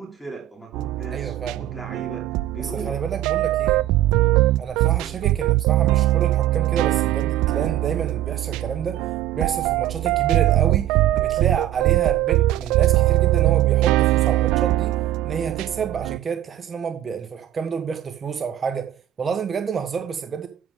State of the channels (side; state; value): left; quieter; 12.7 dB